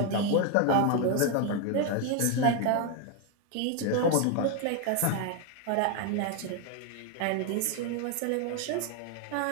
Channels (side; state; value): both; different; correlation 0.01